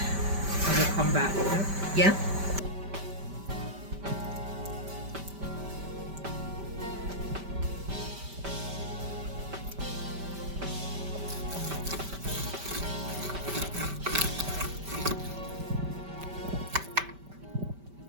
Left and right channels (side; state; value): left; late; 5.1 ms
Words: come back. Yeah.